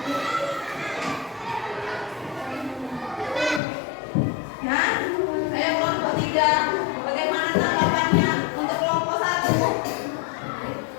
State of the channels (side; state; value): right; drops out; at 3.6 s